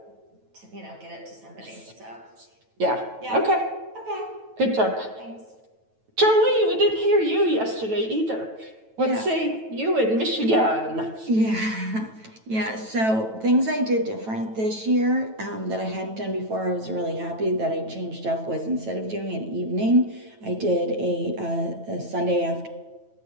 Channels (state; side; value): late; left; 9.1 ms